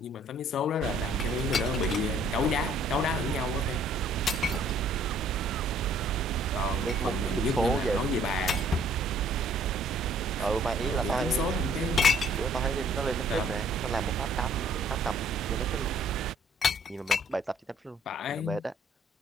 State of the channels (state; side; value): normal; both; correlation 0.60